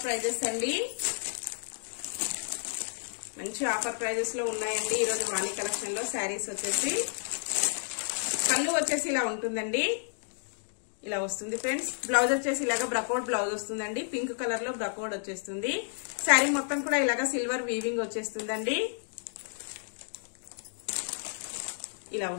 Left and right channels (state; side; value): silent; right; digital silence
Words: ప్రైజెస్ అండి, మంచి ఆఫర్ ప్రైజెస్ లో ఉన్నాయండి ఈరోజు వాణి కలెక్షన్ లో. శారీస్ వచ్చేసి పళ్ళు వచ్చేసి ఇలా ఉంటుందండి, ఇలా వస్తుంది ఫ్రెండ్స్. బ్లౌజ్ వచ్చేసి ఇలాగా బ్రకౌట్ బ్లౌజ్ వస్తుందండి, పింక్ కలర్ లో బ్రకౌట్ వచ్చేస్తుంది. శారీ మొత్తం కూడా ఇలాగా సిల్వర్ వీవింగ్ వచ్చేస్తుందండి, ఇలా